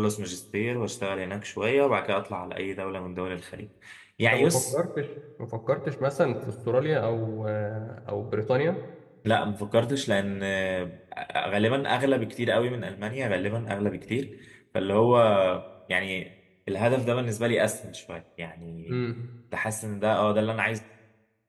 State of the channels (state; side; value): identical; both; correlation 1.00